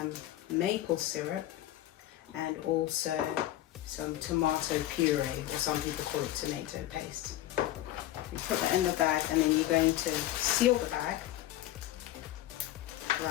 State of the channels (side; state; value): right; quieter; 14.4 dB